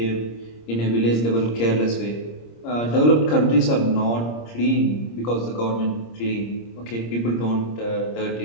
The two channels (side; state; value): right; late; 26 ms